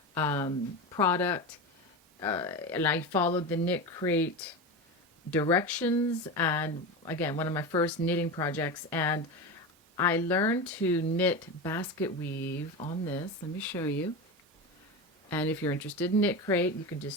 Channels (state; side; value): normal; both; correlation 0.22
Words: product, and I followed the Knit Crate directions, and again, one of my first knitting projects, and I learned to knit basket weave on this. Let me show you. And if you're interested in Knit Crate, you can